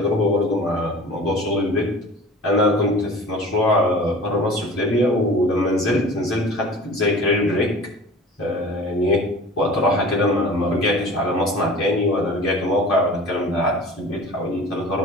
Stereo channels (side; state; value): both; normal; correlation 0.41